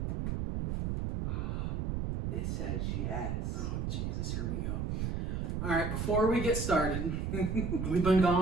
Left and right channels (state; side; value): noise; right; rumble, 1 dB below the sound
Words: It says yes. Oh, Jesus, here we go. All right, before we get started, we've been